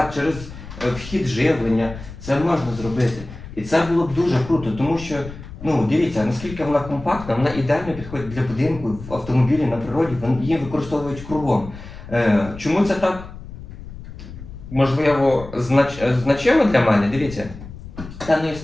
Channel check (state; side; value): noise; left; rumble, 14 dB below the sound